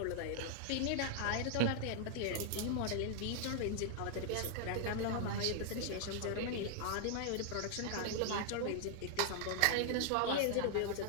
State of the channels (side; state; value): both; different; correlation 0.00